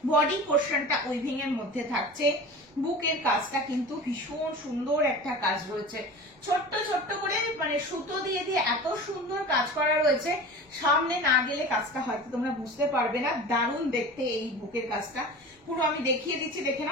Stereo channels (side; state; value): both; normal; correlation 0.35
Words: বডি পোর্শনটা উইভিং এর মধ্যে থাকছে। বুকের কাজটা কিন্তু ভীষণ সুন্দর একটা কাজ রয়েছে, ছোট্ট ছোট্ট করে মানে সুতো দিয়ে দিয়ে এত সুন্দর কাজ করা রয়েছে। সামনে না গেলে কাজটা হয়তো তোমরা বুঝতে পারবে না, দারুণ দেখতে এই বুকের কাজটা। পুরো আমি দেখিয়ে দিচ্ছি, দেখে